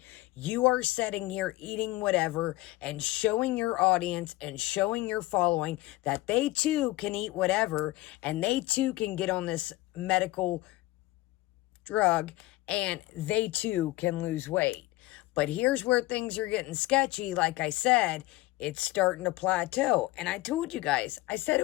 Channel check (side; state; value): right; quieter; 18.4 dB